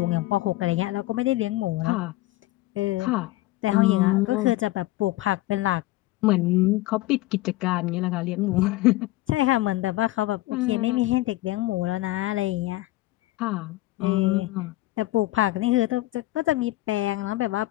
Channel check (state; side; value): quieter; right; 17.6 dB